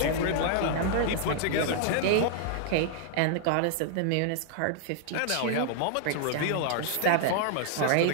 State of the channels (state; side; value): different; both; correlation -0.01